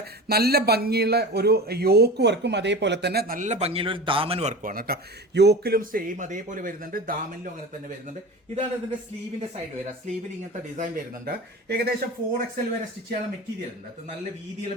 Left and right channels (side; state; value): both; normal; correlation 0.32